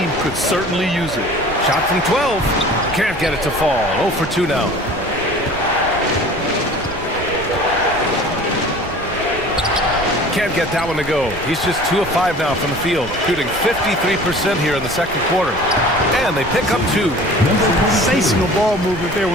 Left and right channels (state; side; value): noise; right; rumble, 14 dB below the sound